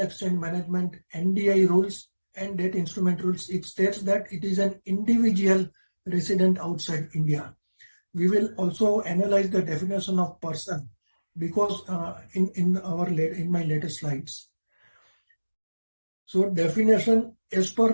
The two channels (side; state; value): both; inverted; correlation -1.00